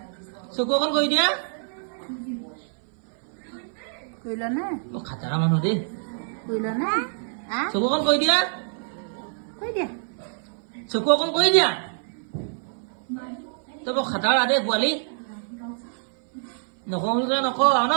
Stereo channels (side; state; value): left; silent; 58 dB below the other